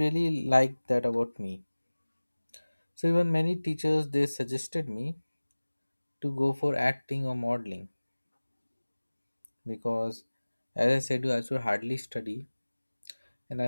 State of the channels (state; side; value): inverted; both; correlation -1.00